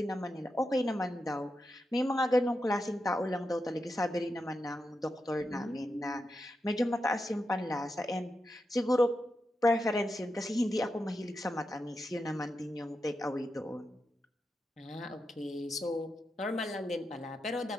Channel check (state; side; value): normal; both; correlation 0.87